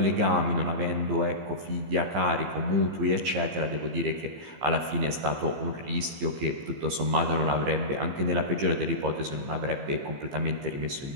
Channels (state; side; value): late; left; 15 ms